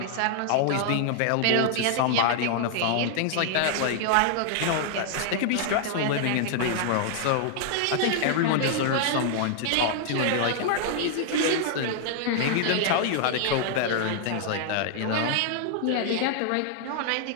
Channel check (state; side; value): different; both; correlation -0.01